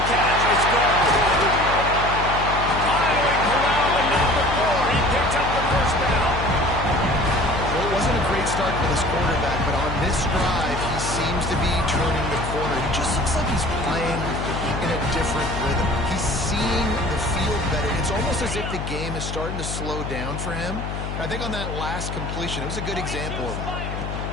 catch. It's gone. Finally corralled at number 4. He picks up the first down. Well, it wasn't a great start for this quarterback, but on this drive, he seems to be turning the corner. He just looks like he's playing in a different rhythm. He's seeing the field better. It's almost as if the game is starting to slow down for him. I think on that last completion, it was a good example of that.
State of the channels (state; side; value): noise; left; hum, 5 dB below the sound